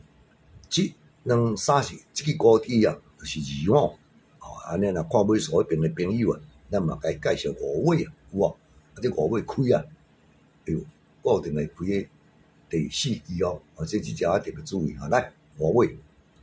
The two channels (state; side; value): identical; both; correlation 1.00